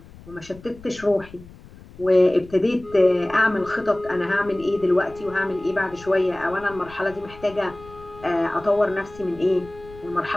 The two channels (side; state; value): left; noise; rumble, 20 dB below the sound